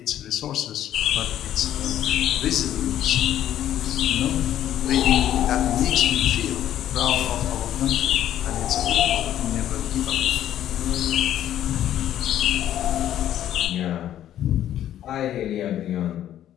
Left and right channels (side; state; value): right; quieter; 11.6 dB